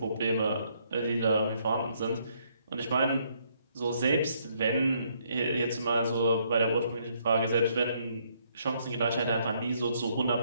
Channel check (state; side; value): inverted; both; correlation -0.70